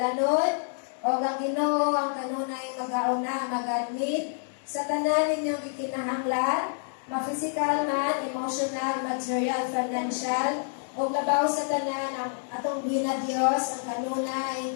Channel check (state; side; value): silent; right; 59 dB below the other